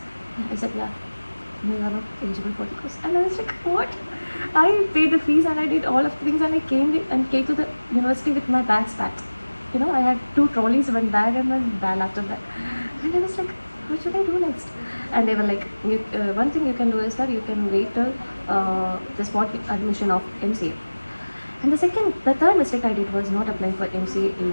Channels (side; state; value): both; inverted; correlation -1.00